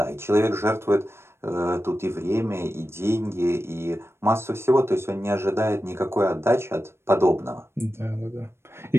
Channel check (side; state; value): left; late; 0.12 ms